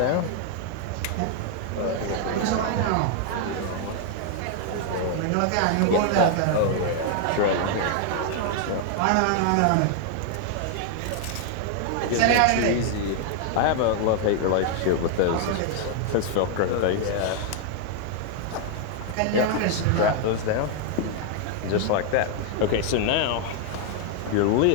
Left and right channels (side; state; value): both; different; correlation 0.00